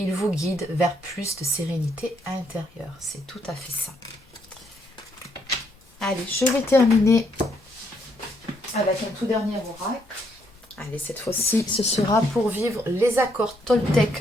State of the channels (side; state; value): both; normal; correlation 0.73